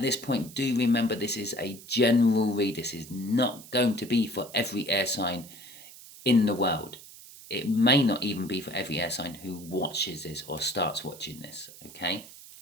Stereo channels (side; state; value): right; noise; hiss, 18 dB below the sound